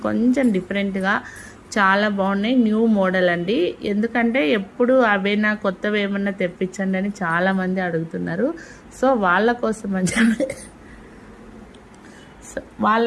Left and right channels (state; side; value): identical; both; correlation 1.00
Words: కొంచెం డిఫరెంట్గా చాలా బాగున్నాయి, న్యూ మోడల్ అండి. ఎందుకంటే ఎప్పుడు అవేనా కొత్తవి ఏమన్నా తెప్పించండి అని చాలామంది అడుగుతున్నారు. సో వాళ్ళ